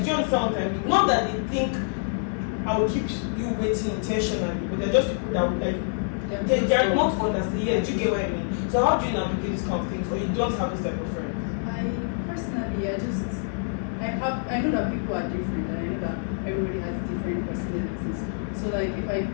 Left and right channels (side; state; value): right; silent; 61 dB below the other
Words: you understand what I mean? Not that they think I will keep you waiting intentionally, but they're just people that would like they're not understand. Yeah, do you get what I mean? So how do you navigate these kind of things, or you don't have this type of friend? Personally, I know that people are different, and I know that everybody has different personalities. So like if I